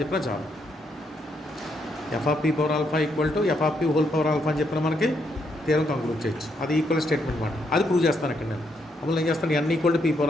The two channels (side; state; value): both; normal; correlation 0.76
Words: చెప్పినా చాలు. F of P power alpha equal to F of P whole power alpha అని చెప్పిన మనకి థియరం కంక్లూడ్ చేయొచ్చు. అది ఈక్వల్ స్టేట్మెంట్ మాట. అది ప్రూవ్ చేస్తాను ఇక్కడ నేను. అప్పుడు ఏం చేస్తాను, N equal to P